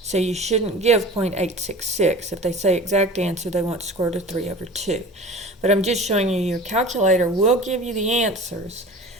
So you shouldn't give 0.866. If they say exact answer, they want square root of 3 over 2. But I'm just showing you your calculator will give you the answers,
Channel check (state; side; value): normal; both; correlation 0.38